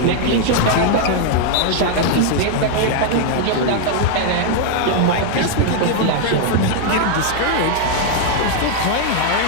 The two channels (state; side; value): different; both; correlation 0.00